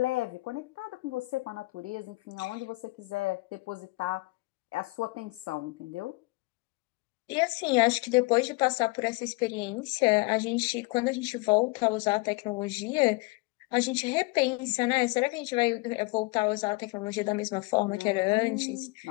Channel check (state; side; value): quieter; right; 24.8 dB